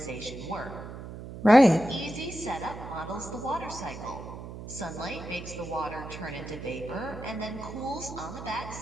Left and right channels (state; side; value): noise; right; hum, 11 dB below the sound